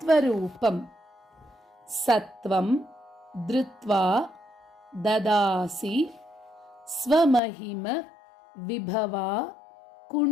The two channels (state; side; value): drops out; right; at 7.4 s